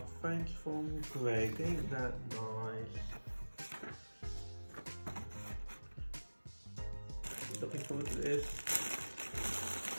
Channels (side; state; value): both; inverted; correlation -1.00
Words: thank you from Greg. Ain't that nice? Looking forward to this.